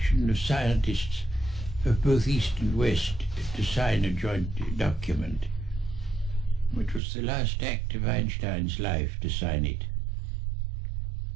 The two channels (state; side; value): drops out; left; at 7.0 s